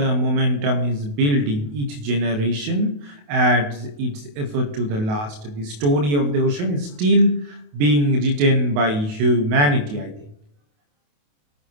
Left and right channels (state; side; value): late; left; 28 ms